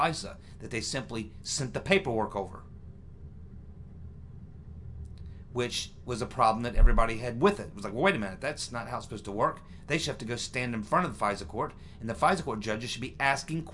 that they simply sent the paperwork over, which was a problem that everybody had with it. It was like, well, wait a minute, that's not how it's supposed to work. They should have to go stand in front of the FISA court, and the FISA court judges should be asking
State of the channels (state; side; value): identical; both; correlation 1.00